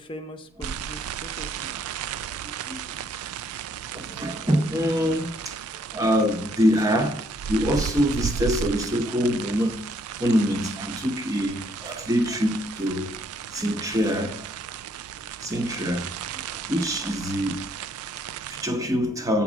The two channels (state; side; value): normal; both; correlation 0.68